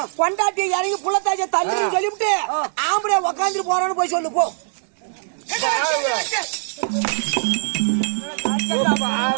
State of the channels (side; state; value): left; silent; digital silence